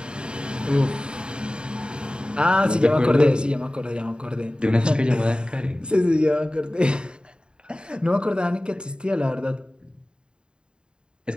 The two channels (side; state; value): left; late; 0.051 ms